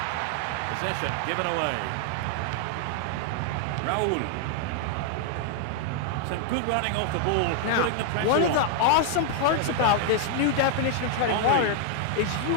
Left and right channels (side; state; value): both; different; correlation 0.00